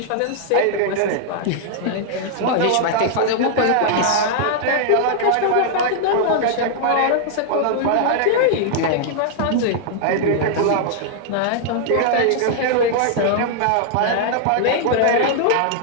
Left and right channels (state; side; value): different; both; correlation -0.01